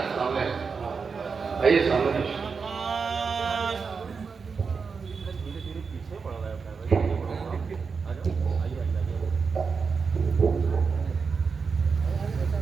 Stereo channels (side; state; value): left; quieter; 5.3 dB